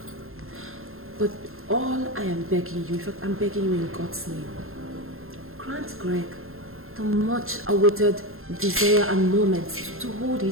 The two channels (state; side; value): late; left; 0.61 ms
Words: But all I am begging you, in fact, I'm begging you in God's name, grant Greg the much awaited desire and moment to hold